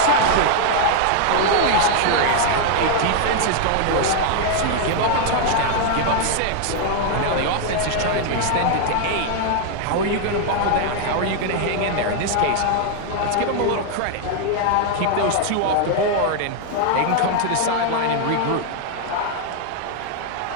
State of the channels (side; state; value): both; different; correlation 0.00